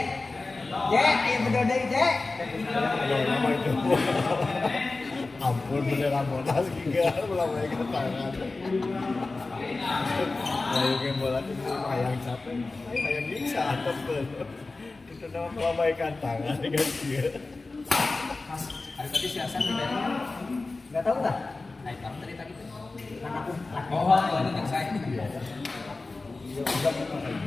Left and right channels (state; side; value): quieter; right; 3.5 dB